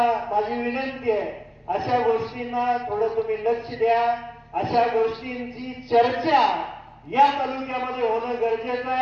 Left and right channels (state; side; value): identical; both; correlation 1.00